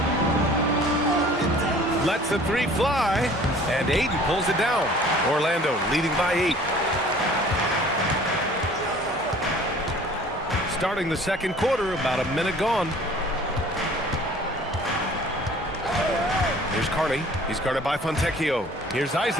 Lets the three fly, and Ayton pulls it down. Orlando leading by 8. Starting the second quarter, about a minute gone. Here's Carney. He's guarded by Fontecchio. Here's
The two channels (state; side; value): normal; both; correlation 0.50